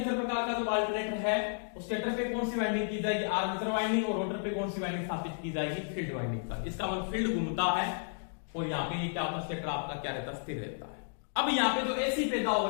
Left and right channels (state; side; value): silent; right; digital silence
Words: प्रकार का जो अल्टरनेटर है, उस स्टेटर पे कौन सी वाइंडिंग की जाएगी, आर्मेचर वाइंडिंग, और रोटर पे कौन सी वाइंडिंग स्थापित की जाएगी, फील्ड वाइंडिंग का। इसका मतलब फील्ड घूमता है और यहाँ पे ये क्या होता है, स्टेटर आपका क्या रहता है, स्थिर रहता है। अब यहाँ पे जो एसी पैदा हो